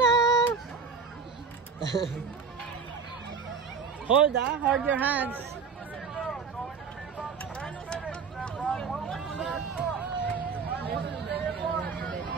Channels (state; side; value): quieter; left; 5.6 dB